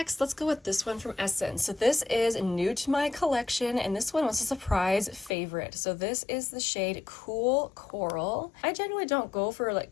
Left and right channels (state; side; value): drops out; right; at 5.4 s